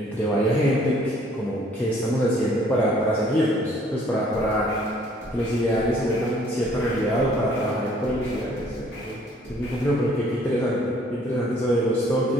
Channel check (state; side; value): normal; both; correlation 0.59